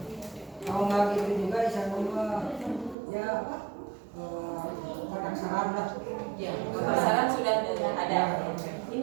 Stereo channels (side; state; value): left; drops out; at 3.0 s